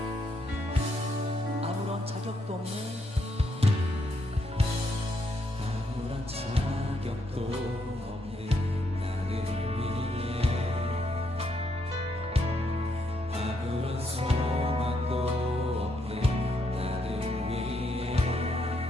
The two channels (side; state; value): both; normal; correlation 0.76